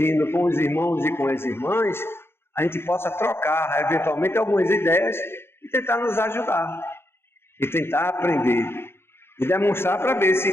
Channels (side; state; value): right; late; 0.11 ms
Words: com os irmãos e com as irmãs, a gente possa trocar, eventualmente, algumas ideias e tentar nos ajudar. e tentar aprender e demonstrar para ver